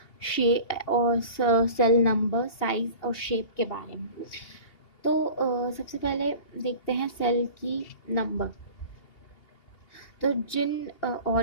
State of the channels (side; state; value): right; late; 2.8 ms